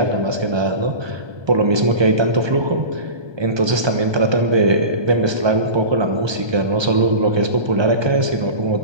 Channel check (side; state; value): left; late; 1.2 ms